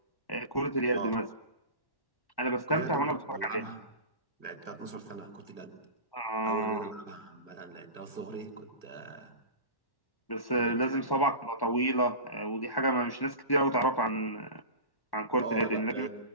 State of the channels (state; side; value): late; right; 1.1 ms